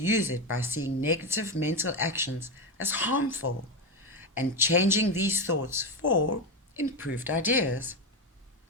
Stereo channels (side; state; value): both; normal; correlation 0.12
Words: it by seeing negative mental actions as harmful and changing these thoughts for improved ideas.